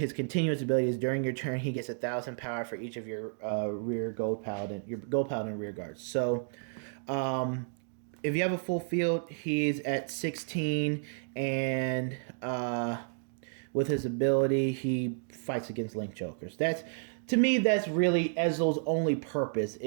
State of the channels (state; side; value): silent; left; digital silence